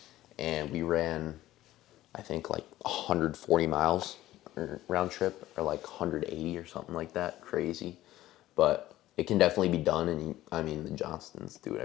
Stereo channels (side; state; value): right; quieter; 15.2 dB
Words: and we ran, I think like 140 miles. Or round trip, or like 180 or something like that. Crazy, but it can definitely be done. And the Johnstons do it